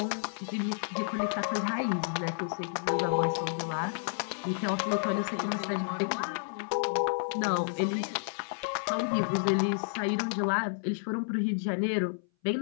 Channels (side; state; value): right; silent; 57 dB below the other